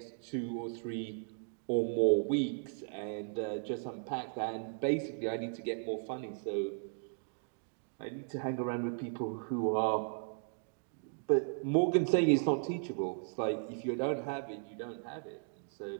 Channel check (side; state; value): left; silent; digital silence